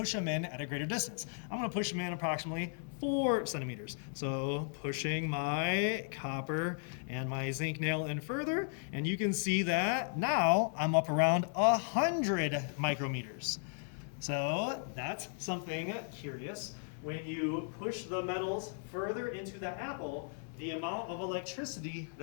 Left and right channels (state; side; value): silent; right; 54 dB below the other